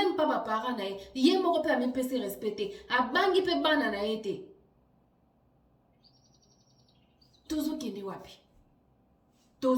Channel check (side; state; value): both; identical; correlation 1.00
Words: pas ba parents na ye. Ye moko pe amepesi respecter. Abangi pe bana na ye te. Tozo kende